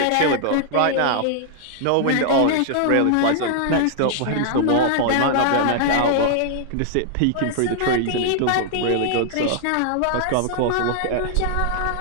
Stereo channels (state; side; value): different; both; correlation -0.01